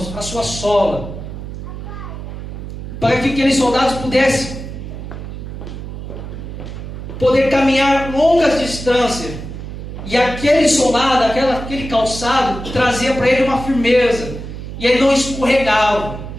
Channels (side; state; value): right; noise; hum, 9 dB below the sound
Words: a sua sola, para que aqueles soldados pudessem poder caminhar longas distâncias. E aquele soldado, aquele calçado, trazia para ele uma firmeza. E ele não escorregava.